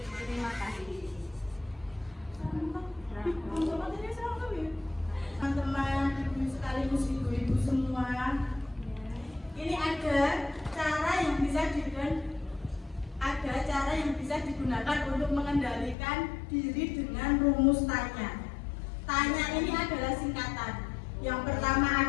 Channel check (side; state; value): right; drops out; at 16.0 s